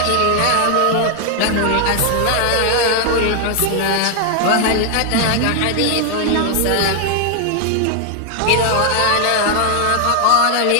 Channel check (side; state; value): both; different; correlation 0.00